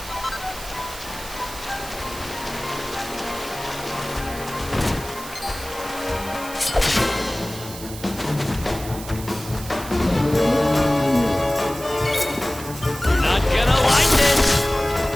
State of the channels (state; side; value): noise; right; hiss, 13 dB below the sound